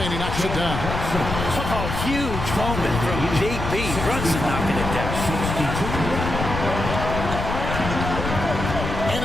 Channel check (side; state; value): left; noise; rumble, 4 dB below the sound